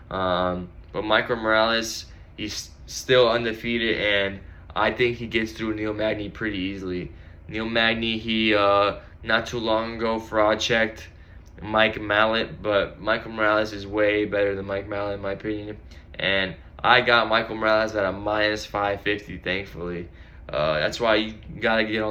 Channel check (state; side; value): identical; both; correlation 1.00